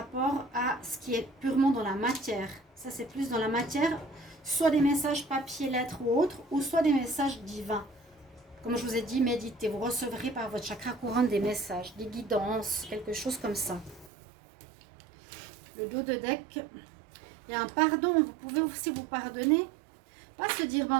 à ce qui est purement dans la matière. Ça, c'est plus dans la matière, soit des messages papier, lettres ou autres, ou soit des messages divins. Comme je vous ai dit, méditez, vous recevrez par votre chakra couronne des messages, des guidances, quelque chose comme ça. Le dos de deck, il y a un pardon, vous pouvez aussi vous pardonner. Pas se dire,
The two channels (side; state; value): left; drops out; at 14.1 s